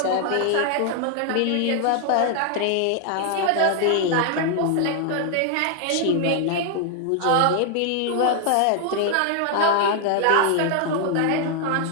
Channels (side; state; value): both; different; correlation 0.00